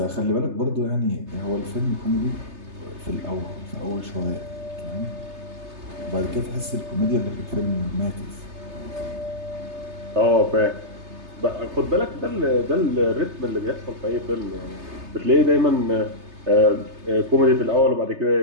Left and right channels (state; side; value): late; left; 3.3 ms